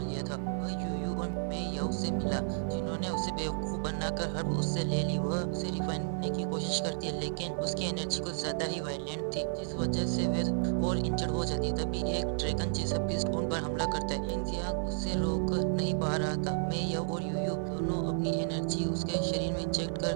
लिया था। वह यूयू और मे याओ से मिला, जिन्होंने उसे बेवकूफ बनाकर हर्ब उससे ले ली। वह उसे रिफाइन करने की कोशिश करती है, लेकिन उसकी एनर्जी कुछ ज्यादा ही वायलेंट थी, जिस वजह से वह और इंजर्ड हो जाती है। तभी एक ड्रैगन जैसा बीस्ट उन पर हमला करता है। शेन जियांग उससे रोक नहीं पा रहा था। मे याओ और यूयू दोनों अपनी एनर्जी उसके शरीर में इंजेक्ट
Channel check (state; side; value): silent; left; digital silence